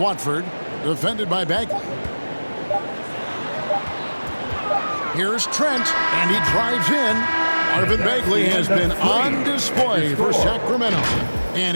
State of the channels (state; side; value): inverted; both; correlation -1.00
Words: defended by Bagley. Here's Trent, and he drives in. Marvin Bagley has been on display for Sacramento,